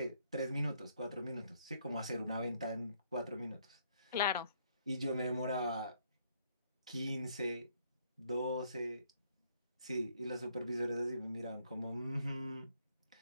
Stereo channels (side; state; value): both; inverted; correlation -0.69